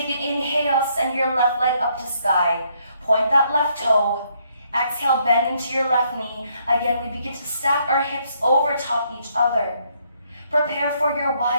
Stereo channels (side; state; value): both; inverted; correlation -0.71